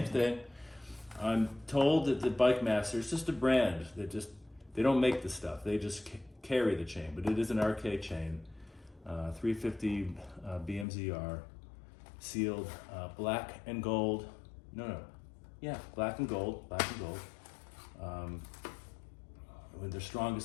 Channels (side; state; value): right; drops out; at 10.9 s